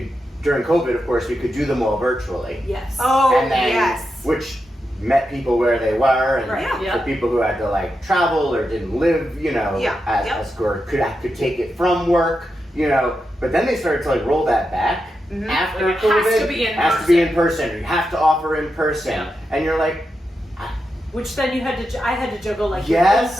during COVID, of course, we could do them all virtually. Yes. Oh, And then, yes. which met people where they were, and Right. Yeah. for people who had to like travel or didn't live, as or could take it from work, But then they started to like roll that back after Like, it COVID. has to be in has to be in person. You have to offer in person, Yeah. and you're like, Which then I had to juggle like Yes.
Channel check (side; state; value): both; normal; correlation 0.87